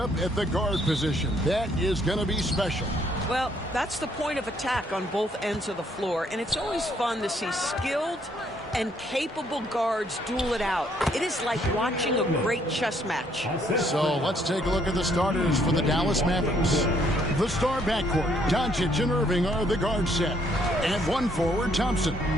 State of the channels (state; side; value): normal; both; correlation 0.68